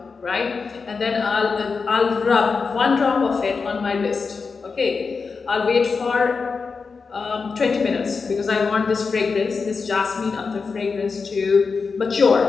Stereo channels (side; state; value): right; quieter; 4.9 dB